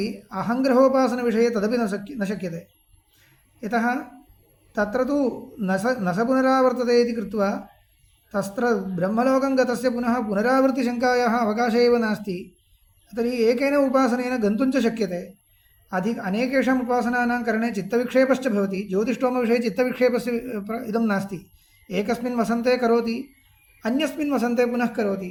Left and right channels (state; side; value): identical; both; correlation 1.00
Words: अहङ्ग्रहोपासनविषये तदपि न शक्यते यतः तत्र तु न स पुनरावर्तते इति कृत्वा तत्र ब्रह्मलोकं गतस्य पुनः पुनरावृत्तिशङ्कायाः अवकाशः एव नास्ति तर्हि एकेन उपासनेन गन्तुं च शक्यते अनेकेषाम् उपासनानां करणे चित्तविक्षेपश्च भवति ज्योतिष्ठोमविषये चित्तविक्षेपस्य इदं नास्ति एकस्मिन् वसन्ते करोति अन्यस्मिन् वसन्ते पुनः करोति